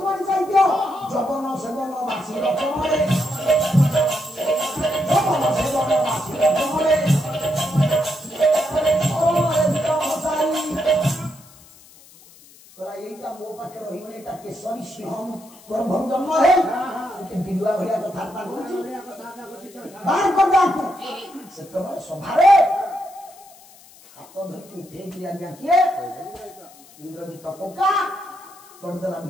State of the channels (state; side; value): noise; left; hiss, 24 dB below the sound